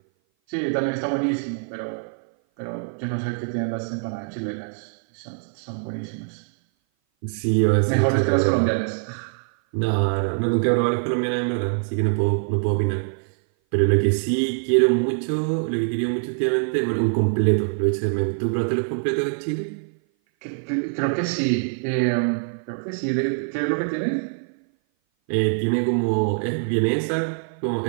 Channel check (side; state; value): left; silent; 57 dB below the other